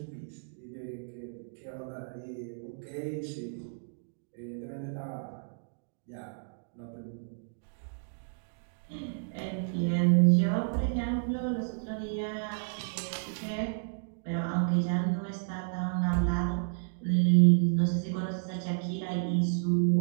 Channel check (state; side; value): silent; left; digital silence